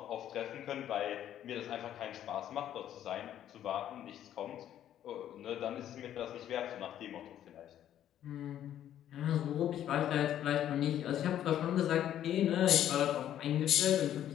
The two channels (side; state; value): right; quieter; 11.1 dB